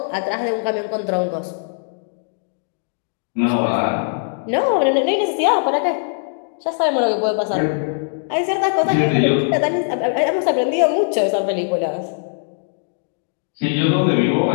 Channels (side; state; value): right; silent; digital silence